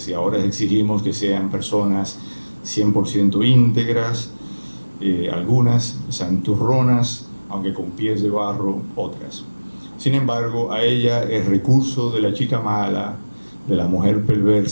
ahora exigimos que sean personas 100% íntegras, algunas santurronas, aunque con pies de barro, otras. Sin embargo, a ella el recurso de la chica mala, de la mujer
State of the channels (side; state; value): both; inverted; correlation -1.00